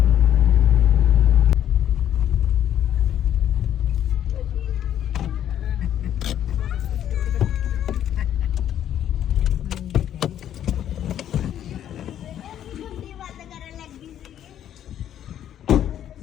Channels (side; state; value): right; quieter; 10.6 dB